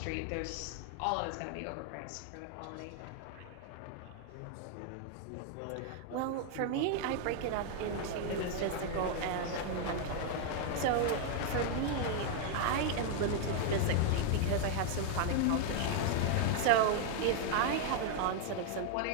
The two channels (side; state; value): both; different; correlation 0.00